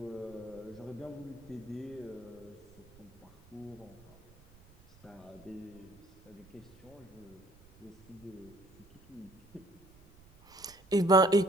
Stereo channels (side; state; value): right; noise; rumble, 25 dB below the sound